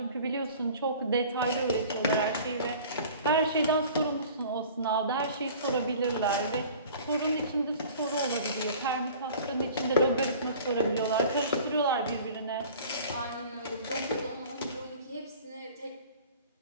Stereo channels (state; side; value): inverted; both; correlation -0.45